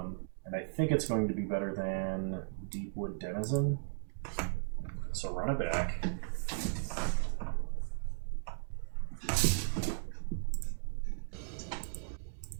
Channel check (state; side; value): silent; left; digital silence